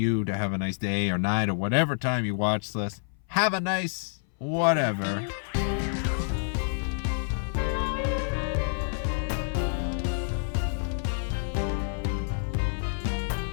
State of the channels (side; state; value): right; silent; 58 dB below the other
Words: to have a nice day or night or whatever time you watch this. Have a nice whatever.